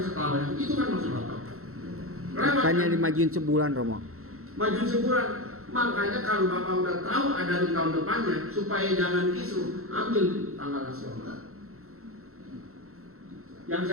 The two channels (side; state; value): left; late; 0.63 ms